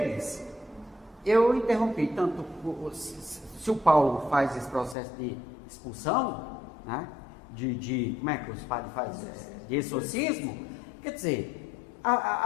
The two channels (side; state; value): right; drops out; at 5.0 s